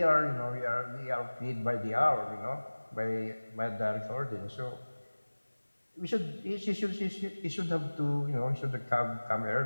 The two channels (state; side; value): inverted; both; correlation -1.00